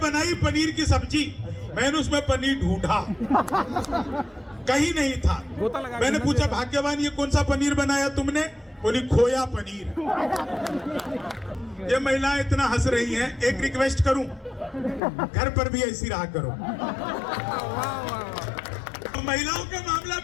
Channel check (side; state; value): right; drops out; at 15.0 s